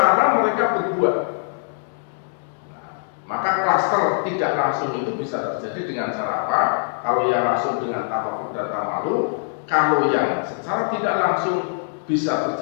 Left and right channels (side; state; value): right; silent; digital silence